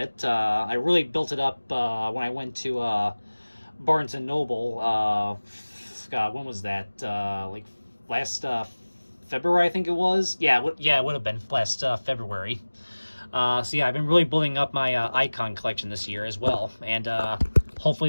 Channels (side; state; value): both; inverted; correlation -1.00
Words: I really built it up when I went to Barnes and Noble. God, when was that? Like last February, I think it was. Yeah, it would have been last February. So yeah, I've been really building up my Icon collection this year as well, and